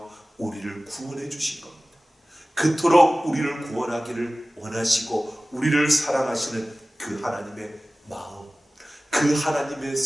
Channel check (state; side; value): normal; both; correlation 0.97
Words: 우리를 구원해 주신 겁니다. 그토록 우리를 구원하기를 원하시고 우리를 사랑하시는 그 하나님의 마음, 그 하나님의